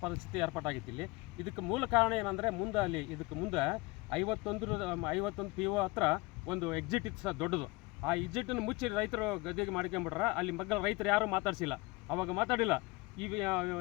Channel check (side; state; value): right; quieter; 24.0 dB